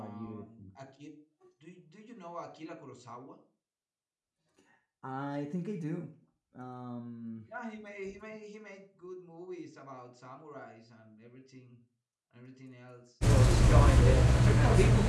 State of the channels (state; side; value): identical; both; correlation 1.00